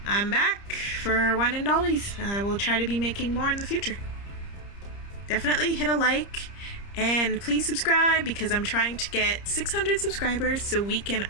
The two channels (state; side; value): late; right; 30 ms